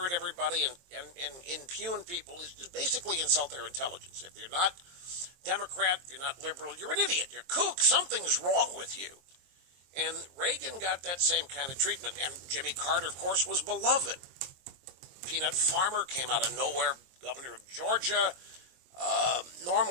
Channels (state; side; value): late; left; 23 ms